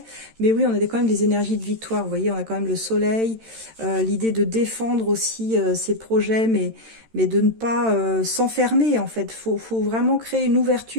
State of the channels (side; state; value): left; late; 13 ms